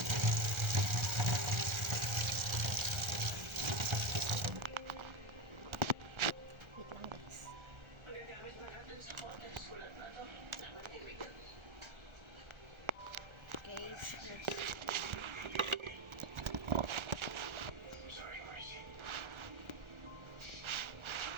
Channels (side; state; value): left; late; 1.3 ms